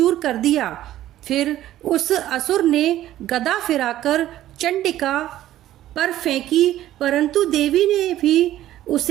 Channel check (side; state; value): left; quieter; 13.5 dB